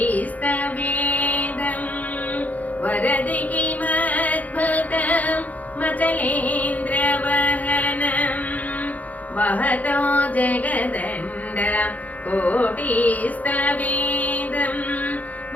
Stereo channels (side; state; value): right; late; 0.077 ms